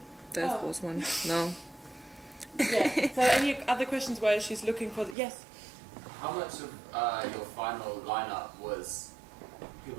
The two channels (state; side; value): drops out; left; at 5.2 s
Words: that Oh. was one. No. Yeah. So any other questions while she's looking for yes? How much of your final lineup was